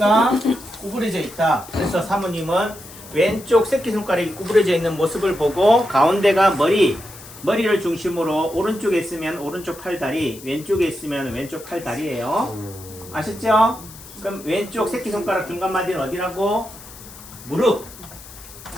구부러져 있다. 그래서 사모님은 왼쪽 새끼손가락이 구부러져 있는 모습을 보고 가운데가 머리를 중심으로 오른쪽에 있으면 오른쪽 팔다리, 왼쪽에 있으면 왼쪽 팔다리예요. 아셨죠? 그럼 왼쪽 새끼손가락 중간 마디는 어디라고? 무릎.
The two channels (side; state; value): left; noise; hiss, 17 dB below the sound